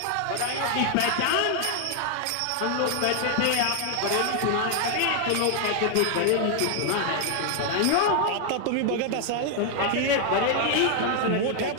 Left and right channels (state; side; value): different; both; correlation 0.00